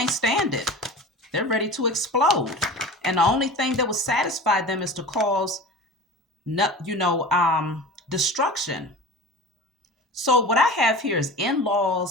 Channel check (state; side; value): normal; both; correlation 0.35